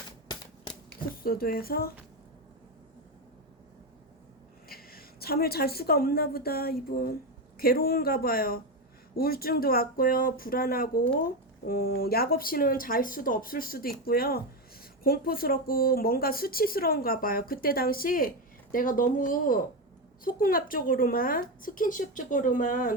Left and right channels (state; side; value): normal; both; correlation 0.12